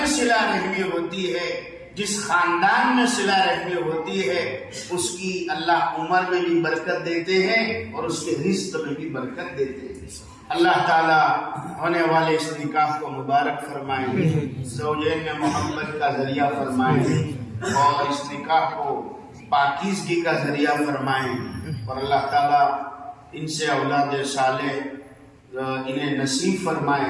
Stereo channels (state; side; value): identical; both; correlation 1.00